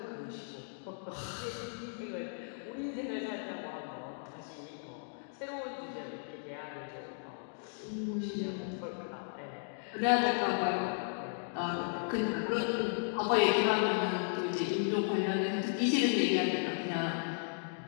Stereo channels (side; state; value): right; silent; digital silence